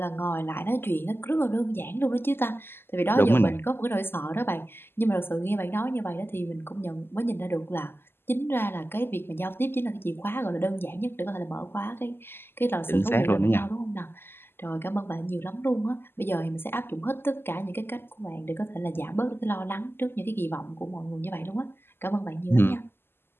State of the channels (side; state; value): right; late; 0.11 ms